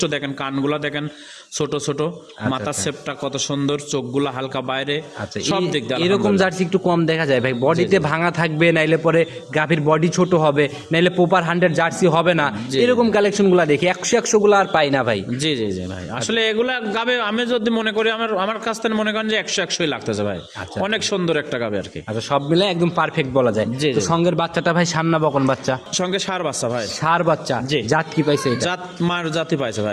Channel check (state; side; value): identical; both; correlation 1.00